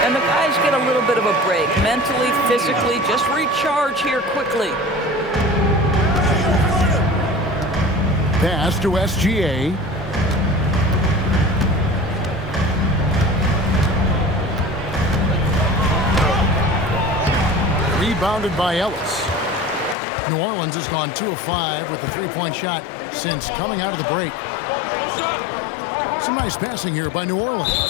And the guys get a little bit of a break. Mentally, physically, just recharge here quickly. Pass to SGA. Rebounded by Ellis. New Orleans has gone 2 of 5 with the 3-point shot since coming out of the break. Some nice passing here by New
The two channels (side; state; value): right; drops out; at 20.0 s